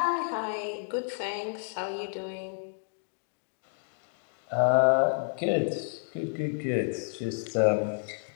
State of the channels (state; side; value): silent; right; digital silence